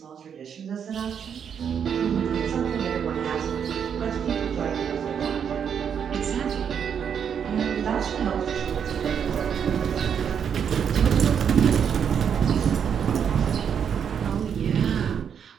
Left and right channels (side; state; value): left; quieter; 7.7 dB